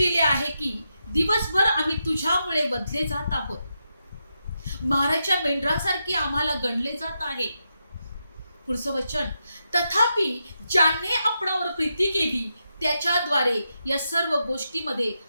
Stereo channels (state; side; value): inverted; both; correlation -0.85